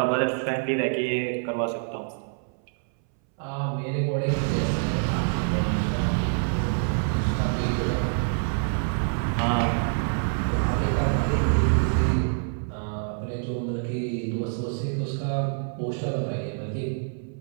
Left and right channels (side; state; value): left; silent; 61 dB below the other